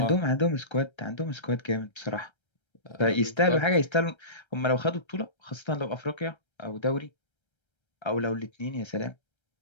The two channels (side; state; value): right; late; 1.3 ms